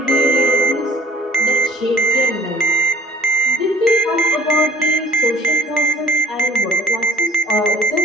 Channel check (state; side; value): normal; both; correlation 0.56